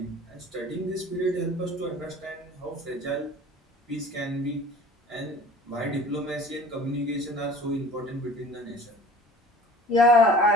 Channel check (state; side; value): normal; both; correlation 0.45